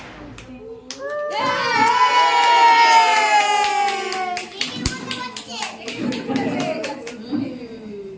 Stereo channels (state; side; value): identical; both; correlation 1.00